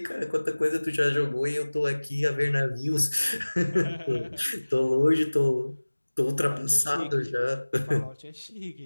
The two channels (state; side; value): inverted; both; correlation -1.00